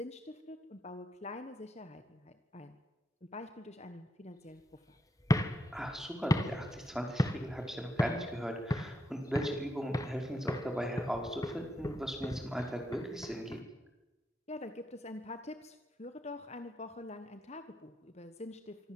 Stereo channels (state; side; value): normal; both; correlation 0.81